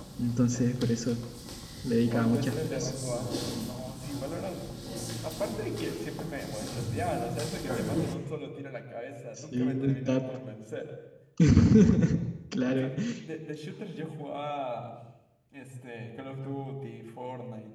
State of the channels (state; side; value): identical; both; correlation 1.00